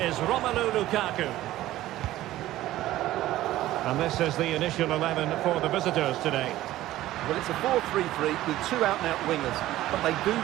Romelu Lukaku. And this is the initial 11 for the visitors today. Well, it's a 4-3-3 with two out-and-out wingers, but they do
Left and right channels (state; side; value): quieter; left; 15.1 dB